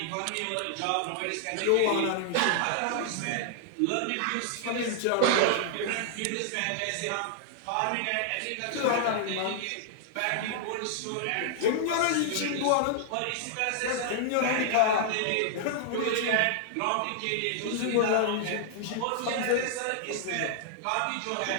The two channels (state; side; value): different; both; correlation -0.01